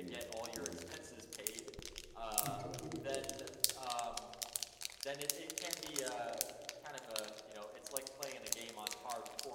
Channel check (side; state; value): both; identical; correlation 1.00